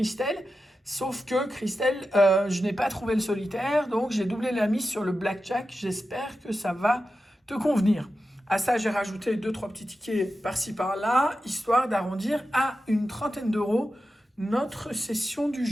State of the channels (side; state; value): both; normal; correlation 0.91